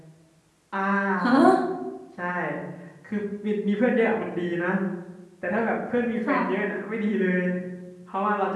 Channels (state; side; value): identical; both; correlation 1.00